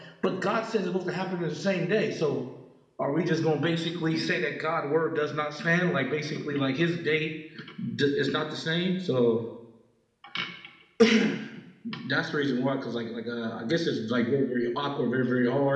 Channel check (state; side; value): identical; both; correlation 1.00